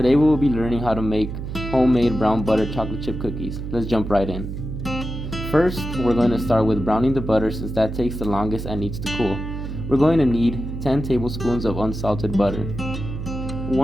we will be learning how to make homemade brown butter chocolate chip cookies. Let's jump right in. First, we're going to start with browning the butter since that takes the longest and needs to cool. We're going to need 10 tablespoons of unsalted butter.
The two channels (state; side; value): noise; right; hum, 6 dB below the sound